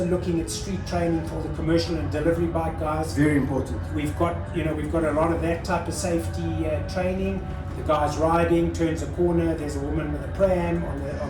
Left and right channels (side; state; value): both; identical; correlation 1.00